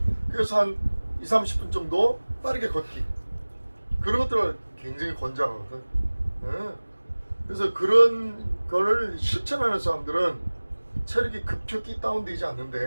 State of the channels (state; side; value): inverted; both; correlation -1.00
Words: 그래서 한 20-30분 정도 빠르게 걷기 그런 것들을 굉장히 권장하거든. 그래서 그런 거를 실천하는 사람들은 체력이 급격히 다운되지